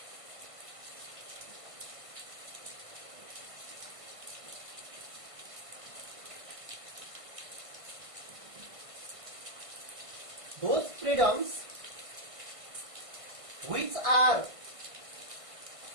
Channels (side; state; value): left; late; 1.5 ms